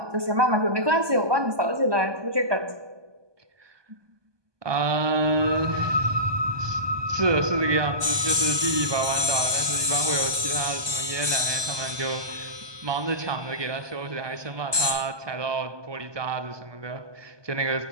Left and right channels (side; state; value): left; late; 1.2 ms